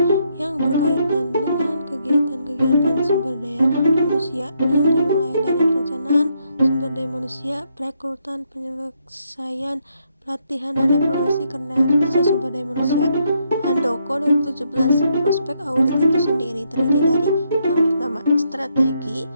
yang berkaitan dengan kegiatan-kegiatan sumber daya manusia yang dimulai dari perencanaan sumber daya manusia, perekrutan, penyelesaian, pelatihan, dan evaluasi kinerja sumber daya manusia. Handoko 2017. Prospek audit itu sendiri terdiri dari yang pertama, strategi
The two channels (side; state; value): both; inverted; correlation -0.76